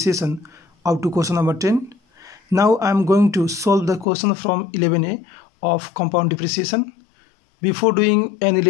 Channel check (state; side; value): drops out; right; at 4.0 s